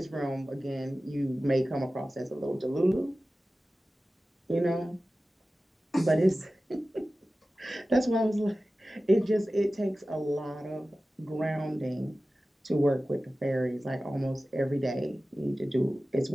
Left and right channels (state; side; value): normal; both; correlation 0.96